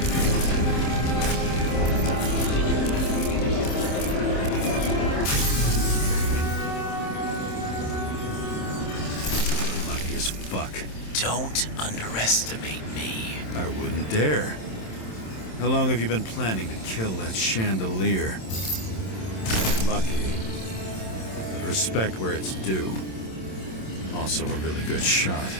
Lucky as fuck. Don't underestimate me. I wouldn't dare. How long have you been planning to kill that chandelier? Lucky. But respect where it's due. Also a really good shot.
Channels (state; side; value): late; right; 27 ms